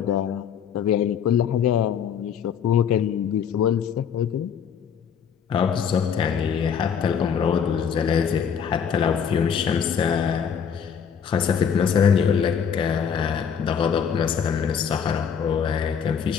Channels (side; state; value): right; quieter; 7.4 dB